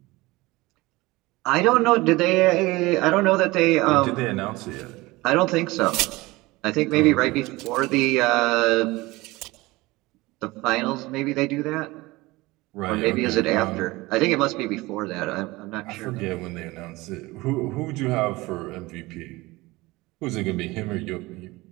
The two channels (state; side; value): quieter; left; 21.0 dB